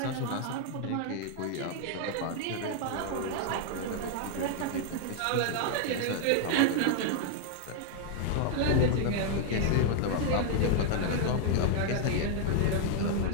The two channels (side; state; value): both; different; correlation 0.00